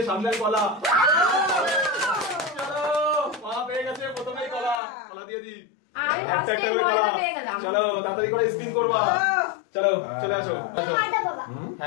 সামনের কলা চলো মা পেয়ে গেছে প্রথমেই কলা দিয়ে দি একটা একটা করে কলা চলো তাড়াতাড়ি করে স্পিন করবা চলো চলে আসো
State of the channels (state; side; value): drops out; right; at 4.8 s